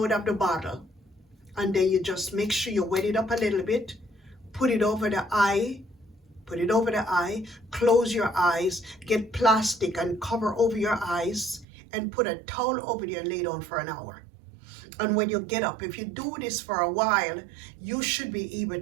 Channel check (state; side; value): drops out; left; at 11.7 s